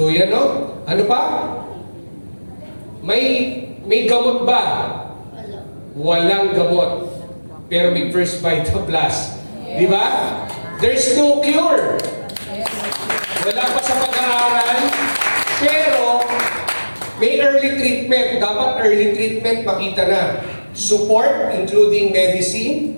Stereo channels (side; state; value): both; inverted; correlation -1.00